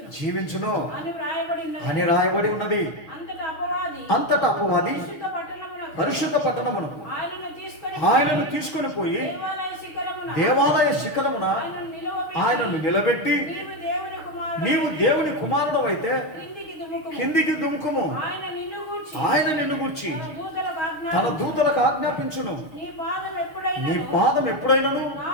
జీవించును అని రాయబడి ఉన్నది. అంతటా అపవాది పరిశుద్ధ పట్టణమునకు ఆయనను తీసుకొని పోయి దేవాలయ శిఖరమున ఆయనను నిలబెట్టి, నీవు దేవుని కుమారుడవైతే కిందికి దుముకుము, ఆయన నిన్ను గూర్చి తన దూతలకు ఆజ్ఞాపించును, నీ పాదం ఎప్పుడైనను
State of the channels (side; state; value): right; late; 6.6 ms